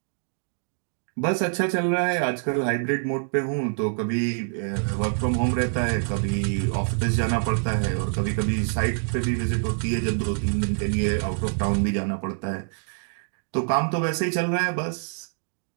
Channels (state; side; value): silent; left; digital silence